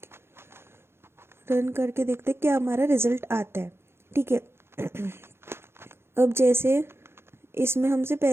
क्या हमारा रिजल्ट आता है। ठीक है, अब जैसे इसमें हमसे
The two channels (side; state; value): left; late; 0.12 ms